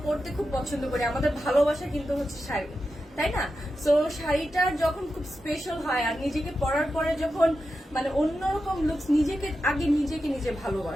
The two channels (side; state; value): both; normal; correlation 0.90